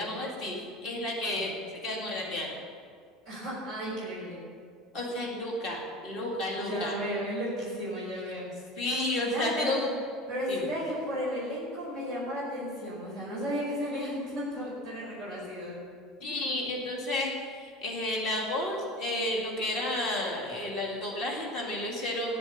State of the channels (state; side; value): normal; both; correlation 0.35